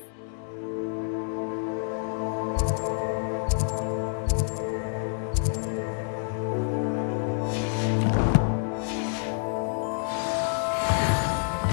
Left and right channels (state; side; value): silent; right; 59 dB below the other